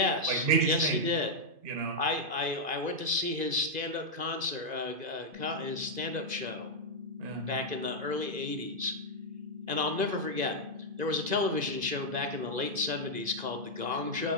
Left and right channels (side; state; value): left; late; 2.5 ms